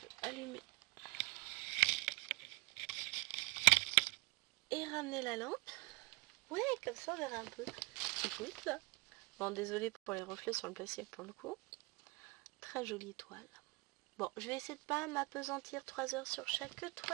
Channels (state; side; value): quieter; left; 24.3 dB